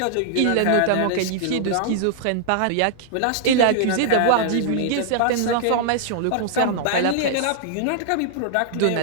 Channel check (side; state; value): both; different; correlation -0.01